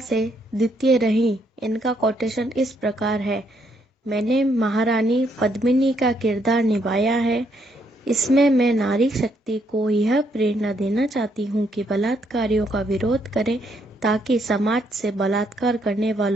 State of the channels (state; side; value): normal; both; correlation 0.73